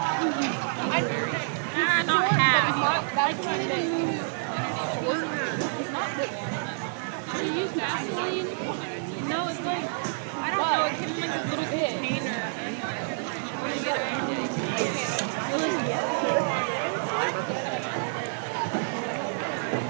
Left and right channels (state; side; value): silent; left; digital silence